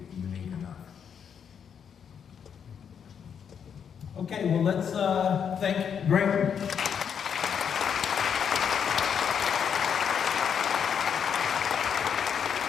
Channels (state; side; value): quieter; right; 7.6 dB